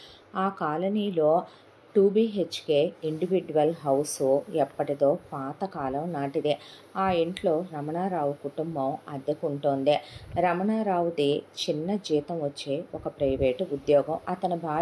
ఆ కాలనీలో 2 BHK ఇండివిడ్యువల్ హౌస్ ఎప్పటిదో పాతకాలం నాటిదే. ఆ ఇంట్లో రమణారావు కుటుంబం అద్దెకుంటోంది. రమణారావుది చిన్న జీతం వచ్చే ఒక ప్రైవేటు ఉద్యోగం. అతని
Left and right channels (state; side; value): identical; both; correlation 1.00